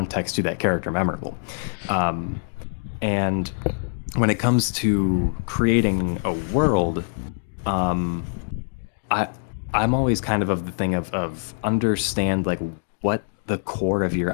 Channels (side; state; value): right; silent; digital silence